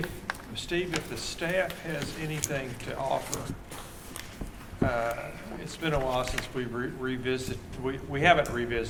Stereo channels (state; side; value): identical; both; correlation 1.00